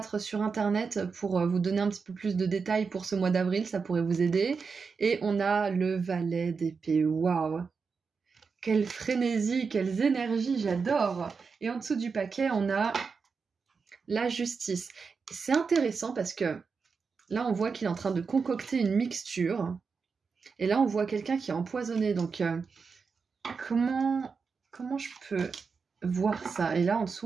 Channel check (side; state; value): left; quieter; 5.2 dB